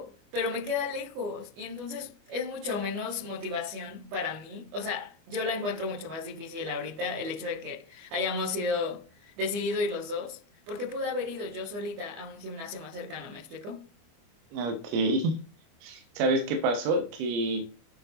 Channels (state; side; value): late; left; 25 ms